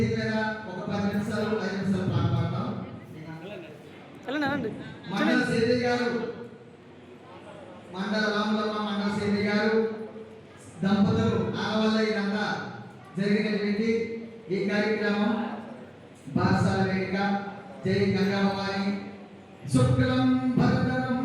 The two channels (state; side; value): identical; both; correlation 1.00